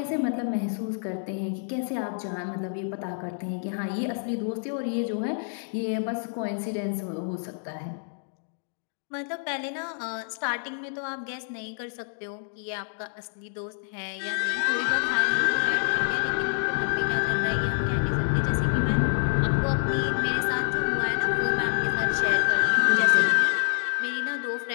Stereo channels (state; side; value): silent; right; digital silence